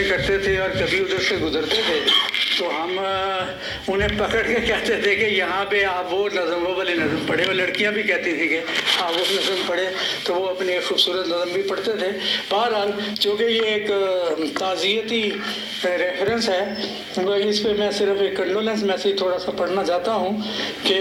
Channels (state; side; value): identical; both; correlation 1.00